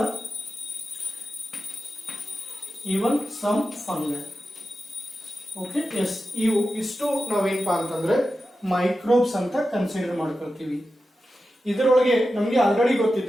even some fungi. Okay, ಇಷ್ಟು ನಾವೇನಪ್ಪಾ ಅಂತಂದ್ರೆ ಮೈಕ್ರೋಬ್ಸ್ ಅಂತ ಕನ್ಸಿಡರ್ ಮಾಡ್ಕೊಳ್ತೀವಿ. ಇದರೊಳಗೆ ನಮಗೆ ಆಲ್ರೆಡಿ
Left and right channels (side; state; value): both; normal; correlation 0.92